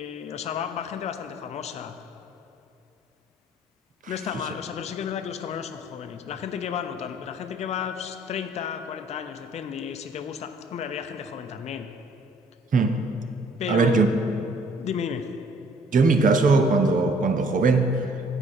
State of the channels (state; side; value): normal; both; correlation 0.59